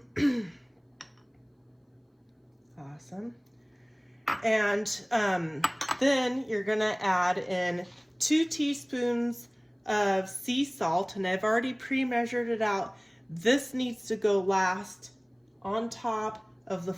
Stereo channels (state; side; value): identical; both; correlation 1.00